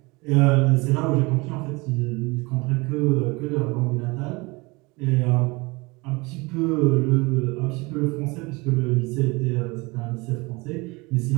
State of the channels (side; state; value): left; quieter; 25.2 dB